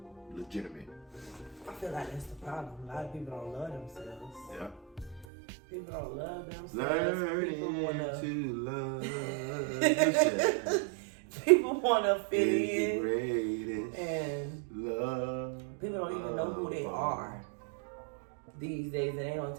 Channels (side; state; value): left; drops out; at 5.2 s